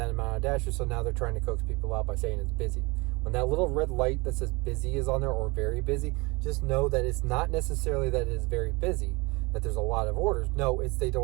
amount of dashers, so now they're trying to coax people out by saying it's busy. When that little red light that says busy is on there, or very busy, just know that it's not necessarily that it is very busy, that there's a lot of orders. No, it's they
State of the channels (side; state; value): left; quieter; 25.5 dB